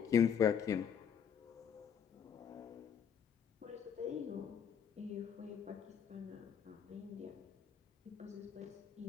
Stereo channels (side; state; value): right; quieter; 7.7 dB